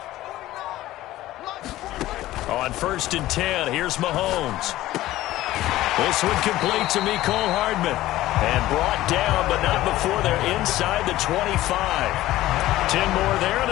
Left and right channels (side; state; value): right; quieter; 15.7 dB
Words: On first and 10, here's Mahomes. This one complete to Mecole Hardman. And brought down, but not before they're inside the 25. 10 more there and